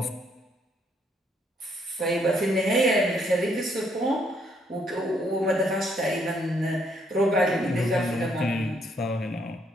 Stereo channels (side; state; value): both; normal; correlation 0.71